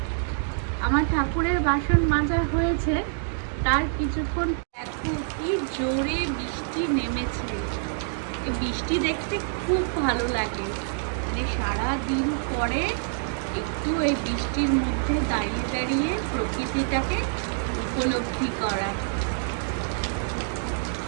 আমার ঠাকুরের বাসন মাজা হয়েছে, তার কিছুক্ষণ দেখো কি জোরে বৃষ্টি নেমেছে। এই বৃষ্টি দেখতে খুব ভালো লাগে, মানে সারাদিন পরে একটু এই বৃষ্টির মধ্যে দাঁড়িয়ে দাঁড়িয়ে প্রকৃতিটাকে উপলব্ধি করা।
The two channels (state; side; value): silent; left; digital silence